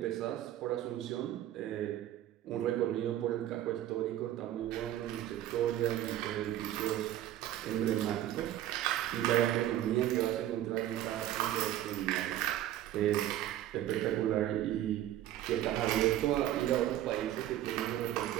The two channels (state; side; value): quieter; left; 12.7 dB